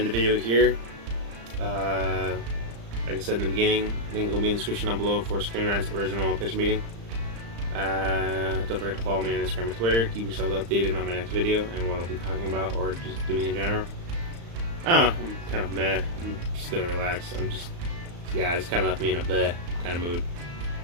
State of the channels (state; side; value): late; left; 35 ms